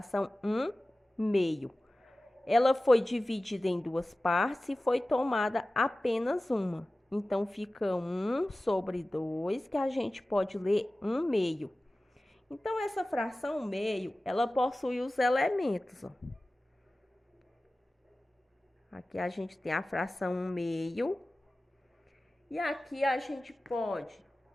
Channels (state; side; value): normal; both; correlation 0.96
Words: 1/2. Ela foi dividida em duas partes e foi tomada apenas uma. Então, fica 1/2, que a gente pode ler 1/2. Então, essa fração meio, ela possui os elementos. Ó. Aqui a gente tem a fração 1/2. E aqui a gente pode